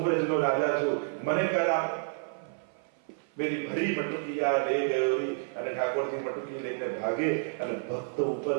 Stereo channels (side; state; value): left; silent; 55 dB below the other